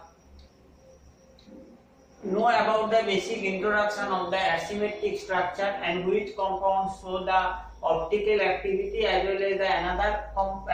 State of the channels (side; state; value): both; identical; correlation 1.00